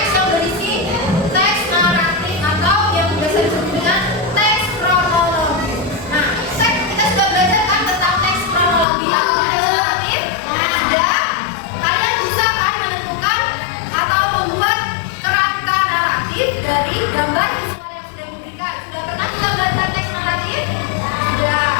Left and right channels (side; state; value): right; drops out; at 8.8 s